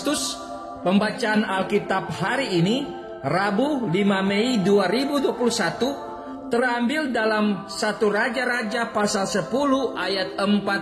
pembacaan Alkitab hari ini, Rabu 5 Mei 2021, terambil dalam 1 Raja-Raja pasal 10 ayat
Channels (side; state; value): both; identical; correlation 1.00